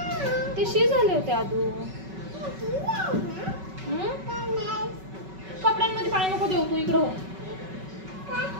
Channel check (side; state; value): left; late; 5.3 ms